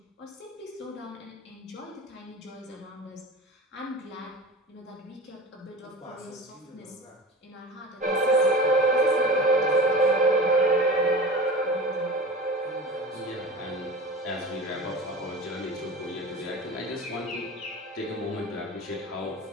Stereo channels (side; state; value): both; normal; correlation 0.34